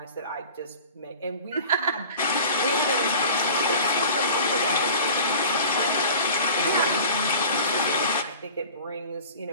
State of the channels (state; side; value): inverted; both; correlation -0.41